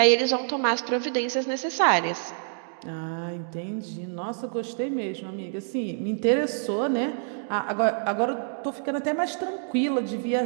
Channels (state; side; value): silent; left; digital silence